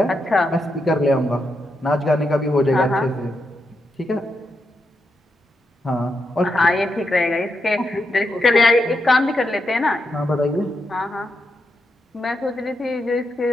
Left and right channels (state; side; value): normal; both; correlation 0.84